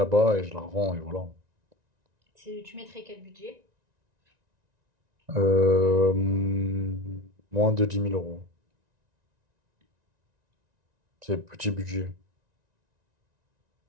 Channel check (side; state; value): left; late; 1.9 ms